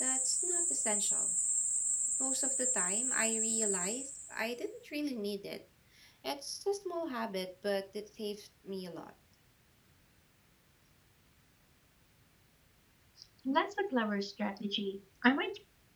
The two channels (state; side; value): identical; both; correlation 1.00